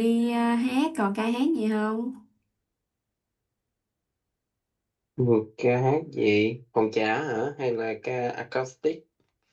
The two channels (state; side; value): identical; both; correlation 1.00